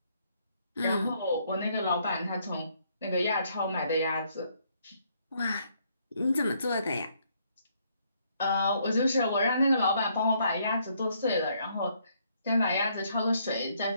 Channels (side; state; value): both; inverted; correlation -0.70